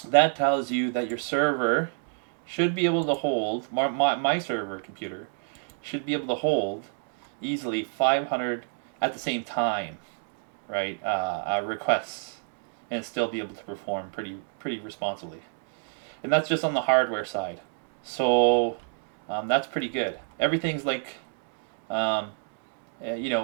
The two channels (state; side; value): silent; left; digital silence